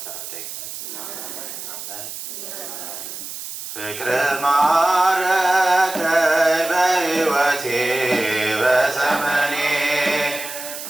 ተራዳኢነት አሜን። ፍቅረ ማረከኝ በሕይወቴ በዘመኔ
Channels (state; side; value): noise; right; hiss, 9 dB below the sound